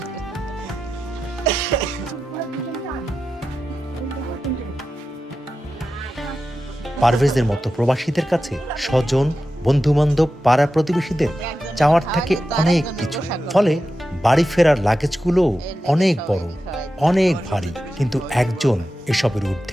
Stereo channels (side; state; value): both; normal; correlation 0.92